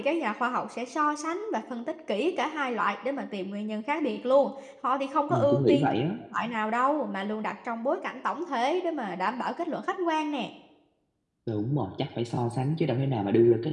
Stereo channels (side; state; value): both; identical; correlation 1.00